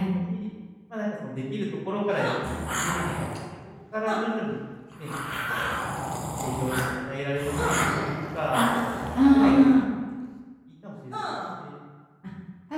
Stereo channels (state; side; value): identical; both; correlation 1.00